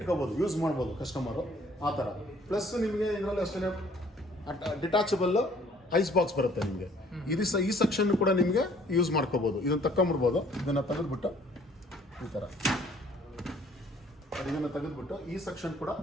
ಯೂಸ್ ಮಾಡ್ಬೋದು ಕಸ್ಟಮರು ಆ ಥರ. ಪ್ಲಸ್ ನಿಮಗೆ ಇದರಲ್ಲಿ ಅಷ್ಟೇ ಡಿಟ್ಯಾಚಬಲ್ ಐಸ್ ಬಾಕ್ಸ್ ಬರುತ್ತೆ ನಿಮಗೆ. ಈ ಸೆಕ್ಷನ್ ಕೂಡ ನಿಮಗೆ ಯೂಸ್ ಮಾಡ್ಕೋಬೋದು. ಇದನ್ನು ತಗೊಂಬಿಡ್ಬೋದು. ಇದನ್ನು ತೆಗೆದುಬಿಟ್ಟು ಈ ಥರ ಇದನ್ನು ತೆಗೆದುಬಿಟ್ಟು ಈ ಸೆಕ್ಷನ್ ಕೂಡ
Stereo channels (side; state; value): both; normal; correlation 0.59